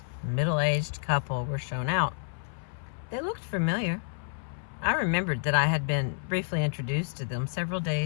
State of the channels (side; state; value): right; silent; 55 dB below the other